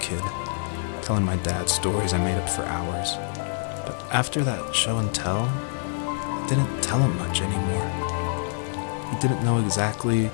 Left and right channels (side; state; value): right; silent; digital silence